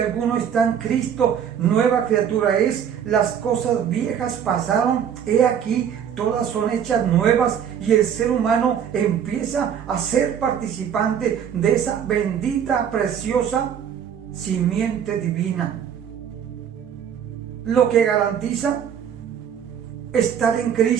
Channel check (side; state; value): left; quieter; 8.5 dB